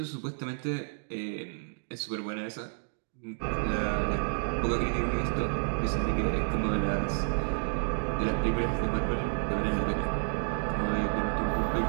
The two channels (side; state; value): left; silent; digital silence